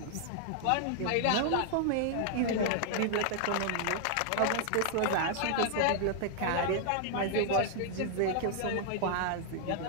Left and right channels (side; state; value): both; different; correlation 0.00